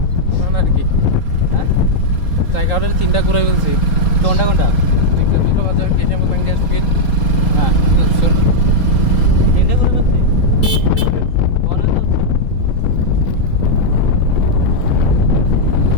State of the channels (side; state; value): right; late; 3.8 ms